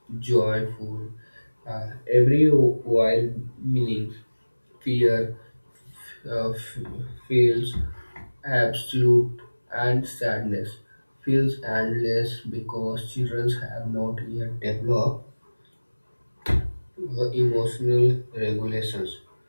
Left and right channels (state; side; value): inverted; both; correlation -1.00